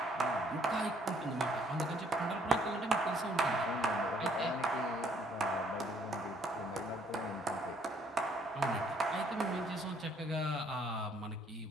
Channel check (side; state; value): both; normal; correlation 0.64